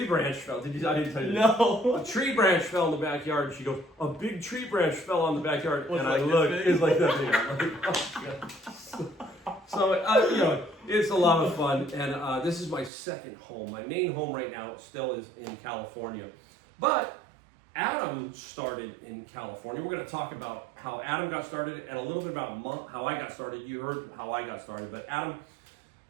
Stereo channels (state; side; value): drops out; left; at 12.9 s